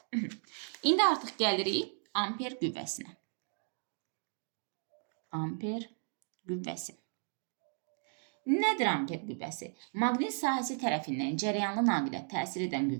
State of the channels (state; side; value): silent; left; 54 dB below the other